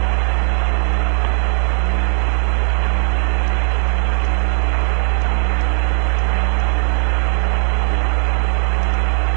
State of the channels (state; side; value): silent; left; digital silence